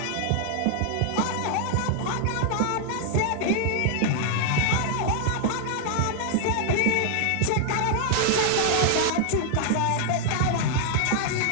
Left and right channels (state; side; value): different; both; correlation 0.00